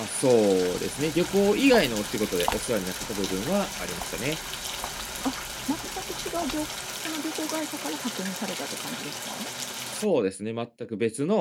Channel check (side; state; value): both; identical; correlation 1.00